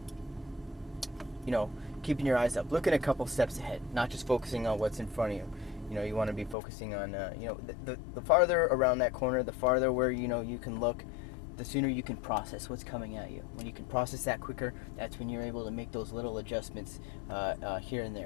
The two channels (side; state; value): right; drops out; at 6.6 s